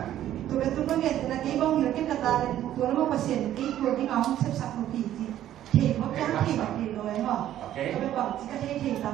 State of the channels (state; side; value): quieter; left; 12.1 dB